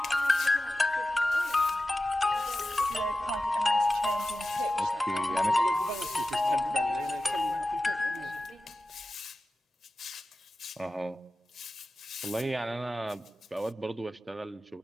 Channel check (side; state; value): both; normal; correlation 0.94